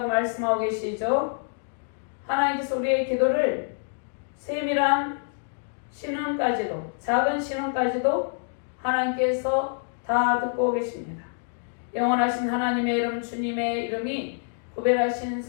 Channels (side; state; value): right; silent; digital silence